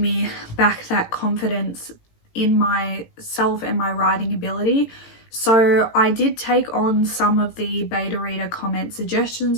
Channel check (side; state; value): right; late; 18 ms